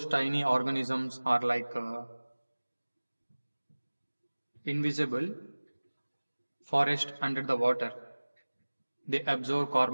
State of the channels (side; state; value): both; inverted; correlation -1.00